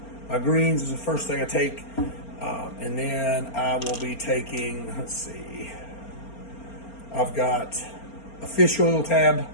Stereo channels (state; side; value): late; right; 4.3 ms